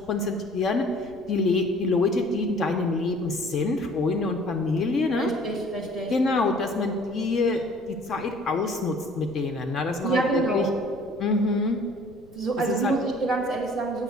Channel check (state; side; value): noise; left; rumble, 25 dB below the sound